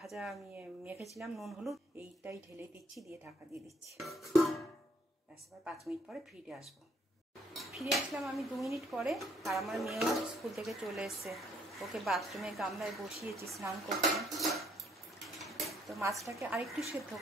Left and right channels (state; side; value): normal; both; correlation 0.67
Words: আমি মেখেছিলাম নুন হলুদ, এইটাই ঢেলে দিচ্ছি, দিয়ে ঢাকা দিয়ে দিচ্ছি। ব্যাস, এবার 5 মিনিট পরে ফিরে আসবো। ফিরে আসলাম আমি 2 মিনিট পরে, আর আমার মেয়েও স্কুল থেকে চলে এসছে। ওকে বাথরুমে গামলায় বসিয়েছি স্নান করতে। তো মাছটাকে আরেকটু সেদ্ধ